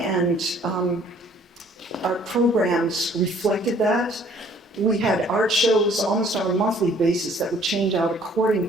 our programs reflected that. We had art shows almost on a monthly basis that would change out according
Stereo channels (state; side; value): normal; both; correlation 0.58